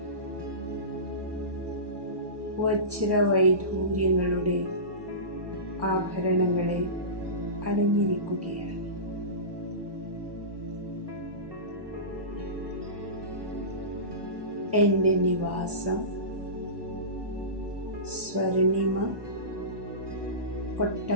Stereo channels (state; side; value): late; left; 1.1 ms